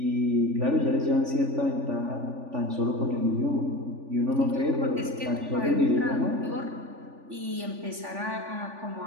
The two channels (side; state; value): left; late; 3.4 ms